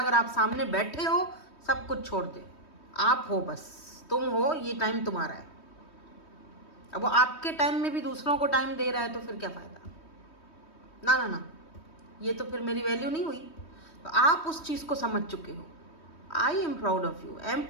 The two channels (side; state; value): right; late; 3.2 ms